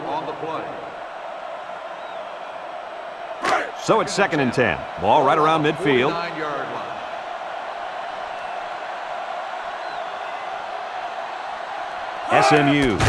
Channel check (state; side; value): identical; both; correlation 1.00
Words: on the play. So it's second and 10. Ball right around midfield. 49-yard line. SMU